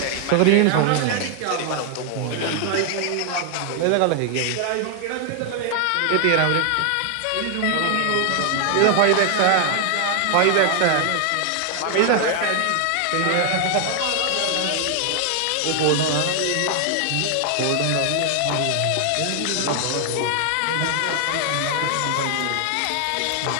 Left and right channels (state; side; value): different; both; correlation 0.00